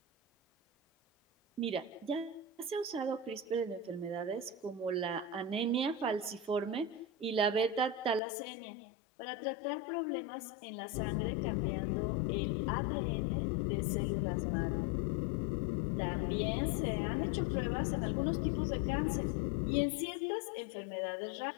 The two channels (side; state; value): right; drops out; at 8.2 s